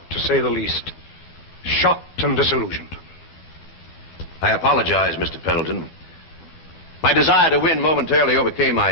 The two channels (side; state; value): right; late; 12 ms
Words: to say the least. Shocked and disillusioned. I apologize, Mr. Pendleton. My desire to win momentarily overcame